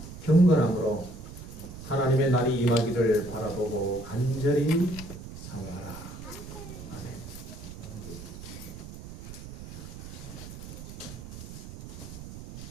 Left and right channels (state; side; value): noise; right; rumble, 12 dB below the sound